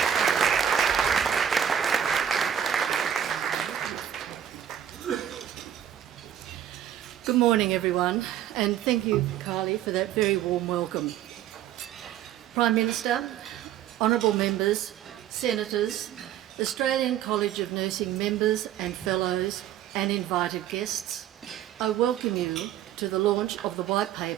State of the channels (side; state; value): left; quieter; 10.2 dB